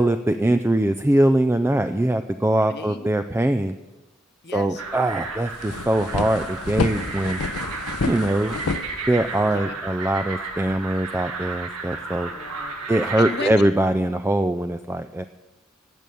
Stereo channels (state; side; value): normal; both; correlation 0.84